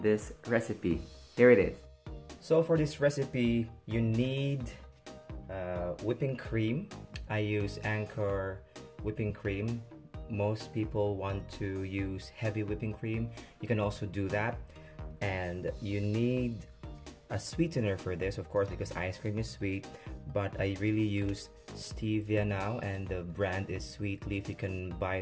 recipe. Here it is. So for this recipe, you need whipping cream. I use Anchor whipping cream. Most people want to use heavy whipping cream. You can also do that. And you need a sweetener for this, of course, because ice cream is sweet. But I really use stevia now, and the brand is Sweet Leaf. You can buy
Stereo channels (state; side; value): identical; both; correlation 1.00